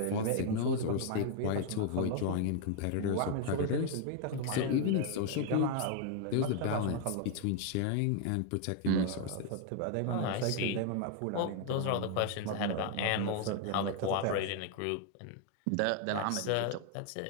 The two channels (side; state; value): both; different; correlation 0.01